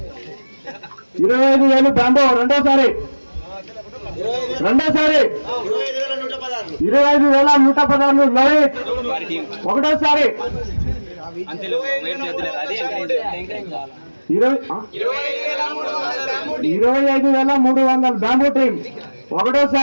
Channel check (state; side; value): inverted; both; correlation -1.00